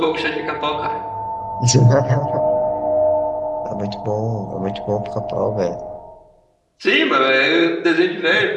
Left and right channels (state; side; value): identical; both; correlation 1.00